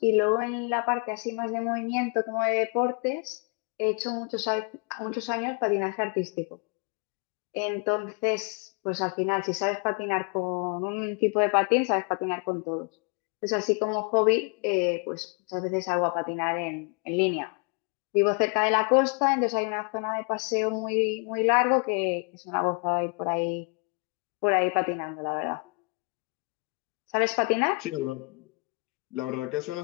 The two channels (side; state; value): right; quieter; 33.9 dB